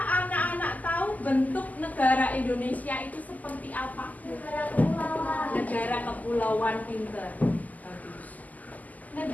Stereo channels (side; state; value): right; late; 0.079 ms